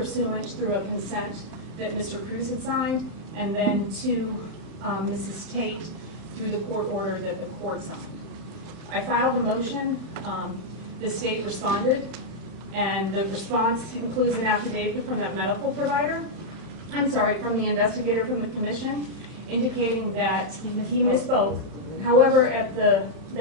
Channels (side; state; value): left; late; 31 ms